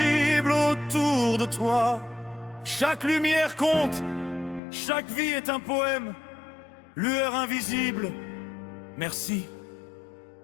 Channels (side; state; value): right; drops out; at 4.6 s